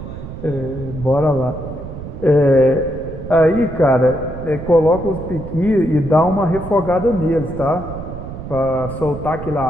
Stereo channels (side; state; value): right; noise; rumble, 10 dB below the sound